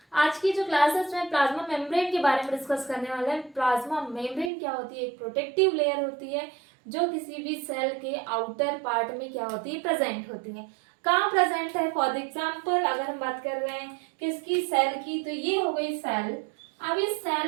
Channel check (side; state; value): left; drops out; at 4.5 s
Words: आज की जो क्लास है उसमें प्लाज्मा मेम्ब्रेन के बारे में डिस्कस करने वाले हैं। प्लाज्मा मेम्ब्रेन क्या होती है? एक प्रोटेक्टिव लेयर होती है जो किसी भी सेल के आउटर पार्ट में क्या होती है, प्रेजेंट होती है। कहाँ प्रेजेंट है? फॉर एग्जाम्पल अगर हम बात कर रहे हैं किसकी, सेल की, तो ये हो गई सेल। अब इस